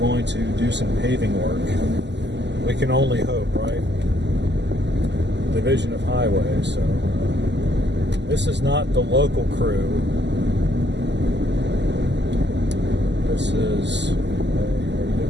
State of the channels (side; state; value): left; late; 0.51 ms